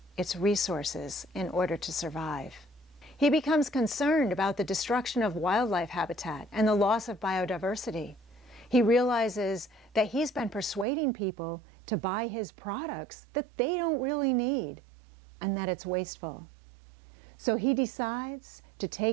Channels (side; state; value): left; drops out; at 10.9 s